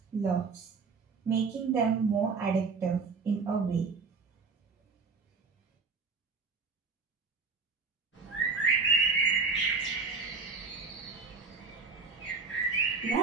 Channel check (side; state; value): left; quieter; 4.7 dB